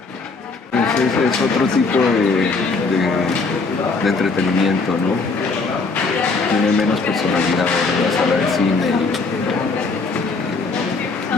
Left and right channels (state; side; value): quieter; right; 4.0 dB